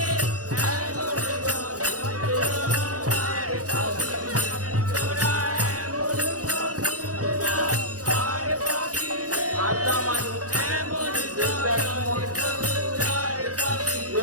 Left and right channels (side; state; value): left; late; 0.67 ms